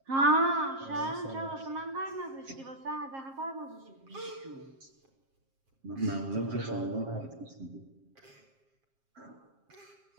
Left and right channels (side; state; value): left; late; 7.5 ms